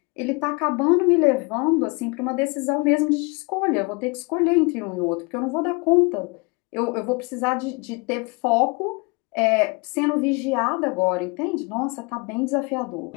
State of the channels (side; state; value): right; quieter; 28.9 dB